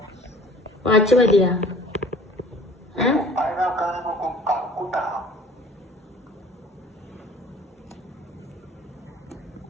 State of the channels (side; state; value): both; normal; correlation 0.49